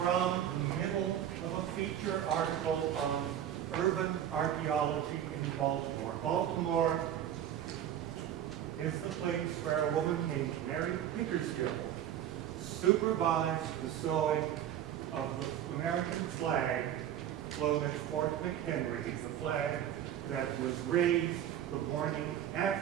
the middle of a feature article on urban archaeology in Baltimore. Baltimore is the place where a woman named Mary Pickersgill supervised the sewing of the American flag flown at Fort McHenry, the flag that was raised the morning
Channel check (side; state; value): left; quieter; 10.7 dB